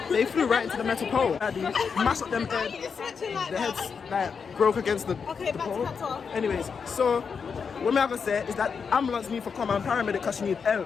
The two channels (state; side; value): quieter; right; 6.0 dB